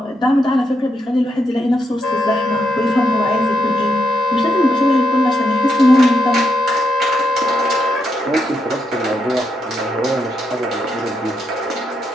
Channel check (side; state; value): both; normal; correlation 0.81